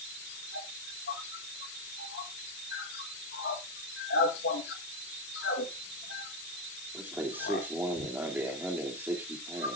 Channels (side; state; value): left; noise; hiss, 8 dB below the sound